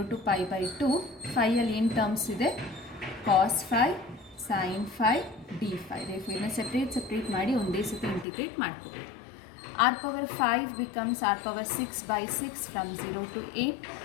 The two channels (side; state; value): right; drops out; at 8.2 s